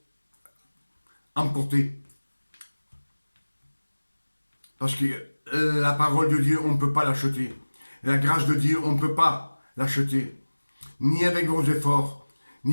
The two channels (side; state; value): both; inverted; correlation -1.00